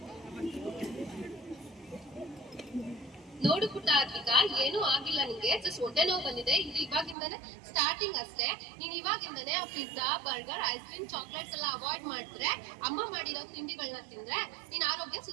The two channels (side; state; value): left; drops out; at 7.2 s